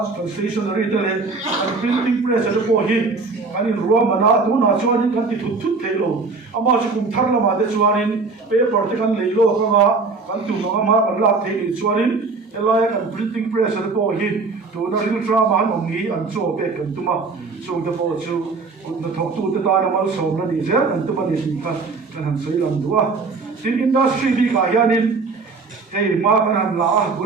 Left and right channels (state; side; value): quieter; left; 4.2 dB